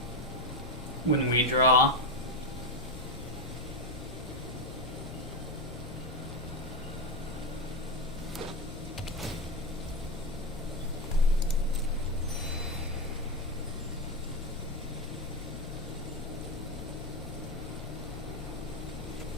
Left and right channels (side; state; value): both; normal; correlation 0.10